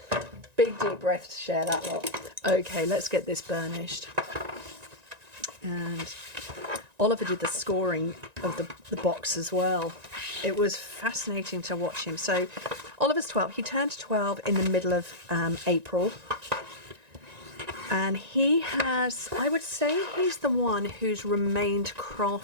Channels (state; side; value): late; left; 1.9 ms